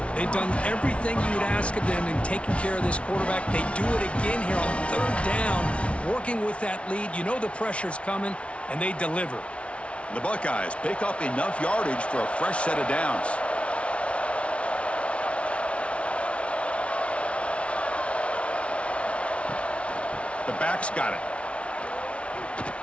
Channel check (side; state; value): right; late; 0.061 ms